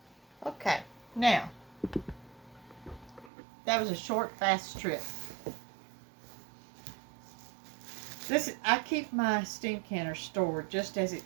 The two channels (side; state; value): left; drops out; at 3.3 s